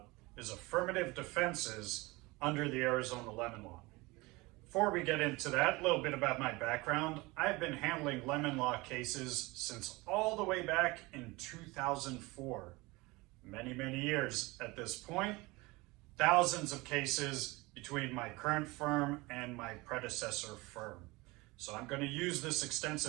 is affirmative defenses under the Arizona Lemon Law. Before we get into that, a little bit about my background. I've been handling lemon law cases since all the way back in 2004. Many years at this point. Thousands of cases between my current firm and my predecessor firm. So I'm going to use this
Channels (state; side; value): quieter; left; 23.1 dB